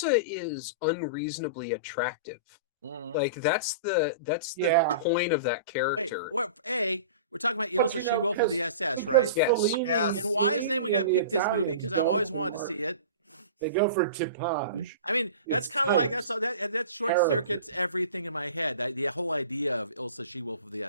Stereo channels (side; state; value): both; inverted; correlation -0.36